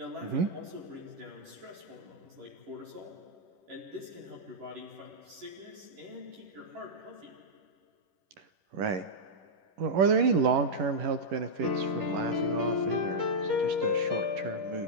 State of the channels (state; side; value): late; left; 11 ms